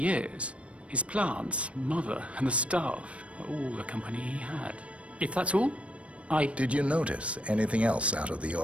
His plants, mother, and the staff, all the company he had. If that's all, Did you notice anything else out of the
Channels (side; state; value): left; late; 0.062 ms